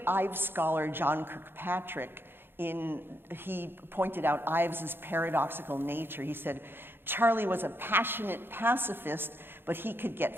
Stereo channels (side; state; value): left; late; 0.10 ms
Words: Ives scholar John Kirkpatrick, he pointed out Ives's paradoxical nature. He said, Charlie was a passionate pacifist, but he could get